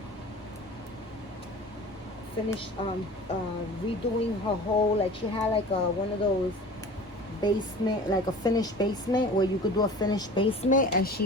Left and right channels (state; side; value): normal; both; correlation 0.40